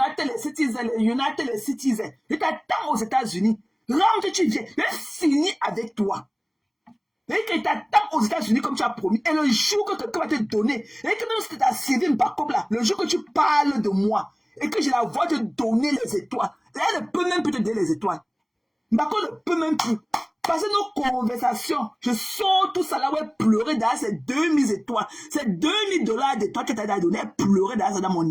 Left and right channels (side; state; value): both; identical; correlation 1.00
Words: Citizens. Je t'attends aux États-Unis. Rentre, tu viens. Je finis avec toi. Et que t'attends aux États-Unis comme tu as promis. Et le jour que quelqu'un va te donner, et que même si tu as servi Mbakom là, le jour que tu parles de moi, et que je la vois te donner les étoiles, elle ne peut même plus te donner les étoiles. Mbakom ne peut même plus. Parce que nos conversations, je sors tout ça là, ouais, pleurer derrière ces 2000 étoiles, ces $2000 d'étoiles que tu as donné, pleurer derrière ça dans mon